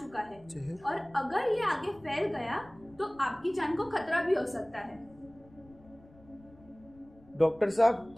है और अगर ये आगे फैल गया तो आपकी जान को खतरा भी हो सकता है। डॉक्टर साहब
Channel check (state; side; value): noise; left; rumble, 26 dB below the sound